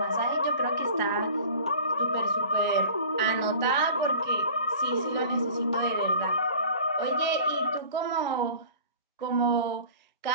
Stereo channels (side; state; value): both; inverted; correlation -0.43